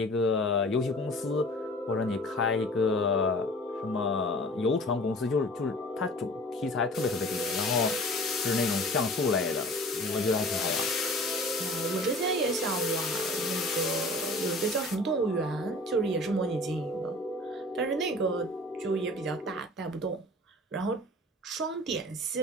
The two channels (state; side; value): normal; both; correlation 0.44